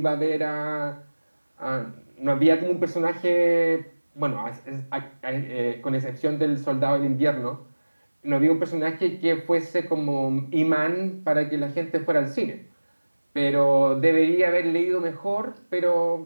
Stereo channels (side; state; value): both; inverted; correlation -1.00